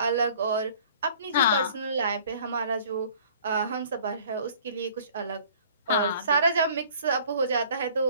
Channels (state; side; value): inverted; both; correlation -0.52